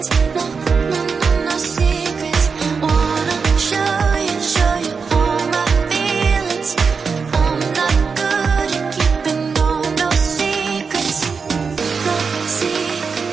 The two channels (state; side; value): quieter; left; 5.3 dB